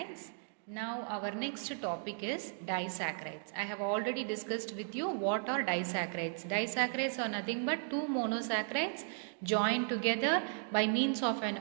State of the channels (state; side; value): silent; left; 54 dB below the other